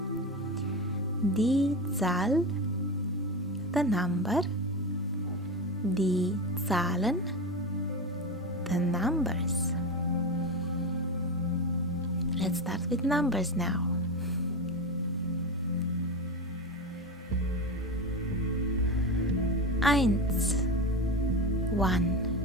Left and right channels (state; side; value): normal; both; correlation 0.21